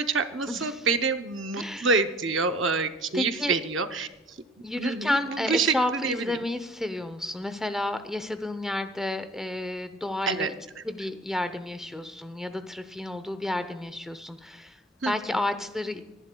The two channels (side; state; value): both; normal; correlation 0.48